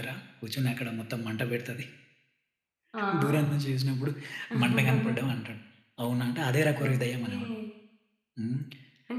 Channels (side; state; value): both; identical; correlation 1.00